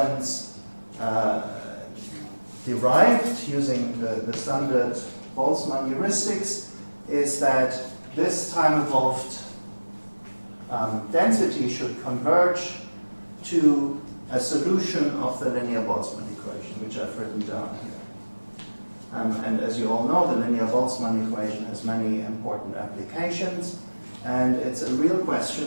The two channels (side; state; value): both; inverted; correlation -1.00